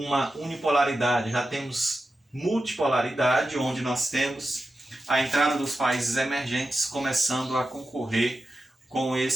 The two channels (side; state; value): both; normal; correlation 0.91